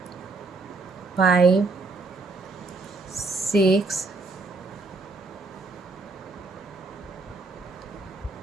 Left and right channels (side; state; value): left; quieter; 3.7 dB